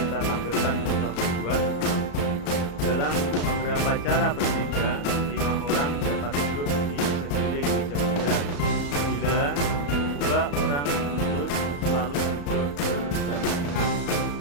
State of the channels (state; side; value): late; right; 35 ms